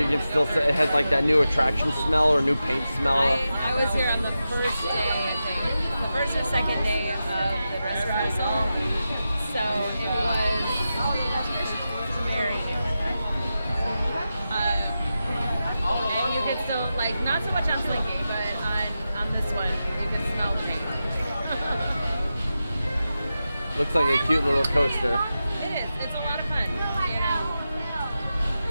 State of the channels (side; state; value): both; inverted; correlation -0.91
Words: can still it has like that new attraction smell or new paint smell. I was here on the first day, I think. The first or second day of the dress rehearsal. So it was very new. And you could still, like, not so much on Slinky, but on this one, you can smell the paint. Looks like a cute little coaster. It is. It's a lot of fun. You know.